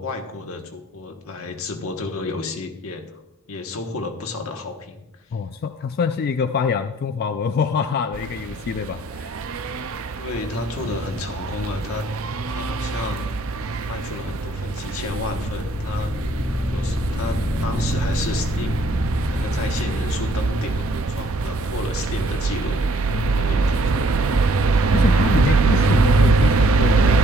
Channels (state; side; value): normal; both; correlation 0.62